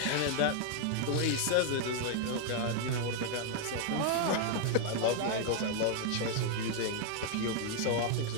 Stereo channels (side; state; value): both; different; correlation 0.00